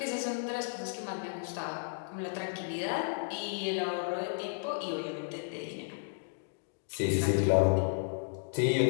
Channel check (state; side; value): silent; right; digital silence